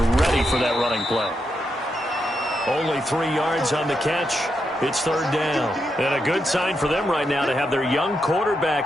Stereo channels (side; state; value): both; normal; correlation 0.84